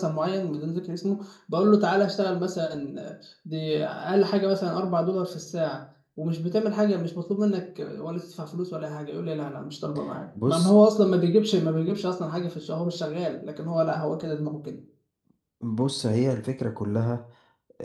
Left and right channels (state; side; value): identical; both; correlation 1.00